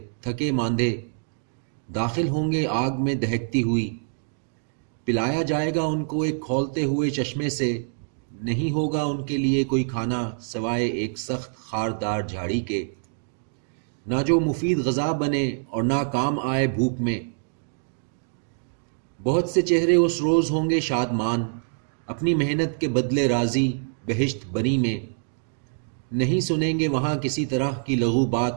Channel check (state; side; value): silent; left; digital silence